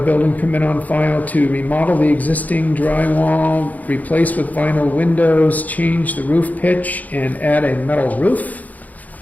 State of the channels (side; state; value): right; late; 0.078 ms